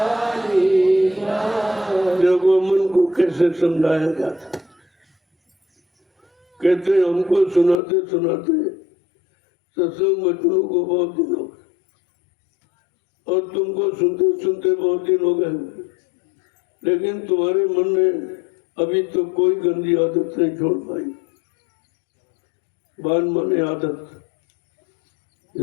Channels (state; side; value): drops out; right; at 7.8 s